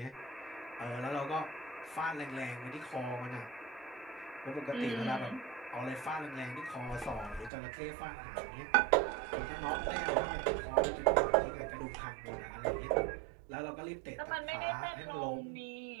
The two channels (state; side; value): drops out; left; at 7.5 s